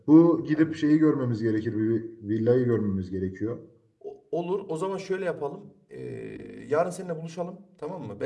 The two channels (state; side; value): identical; both; correlation 1.00